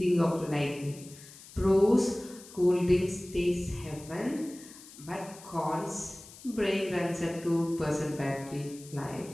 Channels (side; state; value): left; noise; hiss, 19 dB below the sound